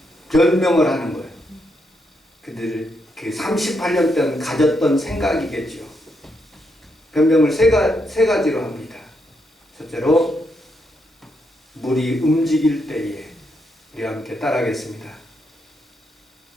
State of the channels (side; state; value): both; normal; correlation 0.80